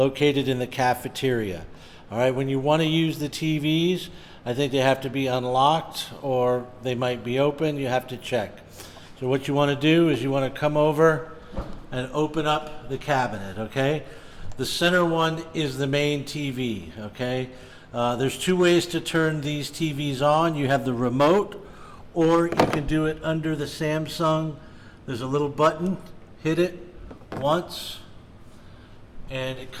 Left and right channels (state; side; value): identical; both; correlation 1.00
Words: in the cafeteria. All right, when you want to use the TVs, I think they have to be unlocked or they might be open. You have to check. So what you want to do is you want to come over and open up the cabinet, okay? The center one is the main TV, okay? There's two ways to turn these TVs on. You have the remote, or you can do it under the Samsung. There's a little button, hit it once, and it